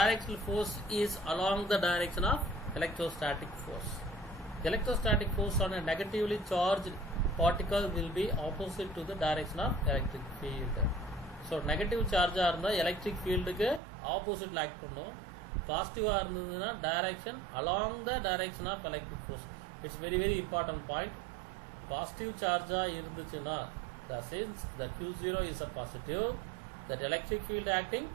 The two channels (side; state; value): left; drops out; at 13.8 s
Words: force is along the direction of electrostatic force. Electrostatic force on a negatively charged particle will be opposite to the direction of electric field. So negative charge the electric field ku opposite la act pannum. Positive irundhaduna direction along the direction of electric force. It's very, very important point. Positive charge irundhuchuna, since the Q0 is a positive, that electric field acting